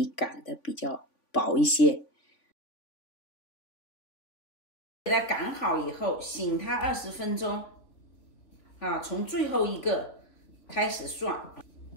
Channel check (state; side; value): late; right; 3.5 ms